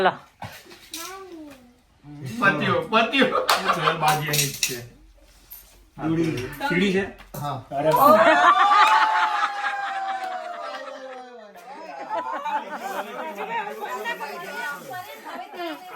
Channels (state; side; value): identical; both; correlation 1.00